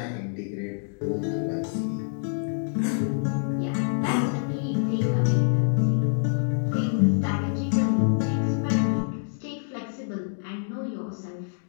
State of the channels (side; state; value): right; silent; digital silence